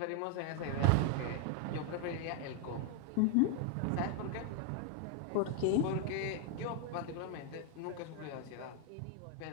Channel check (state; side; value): different; both; correlation 0.00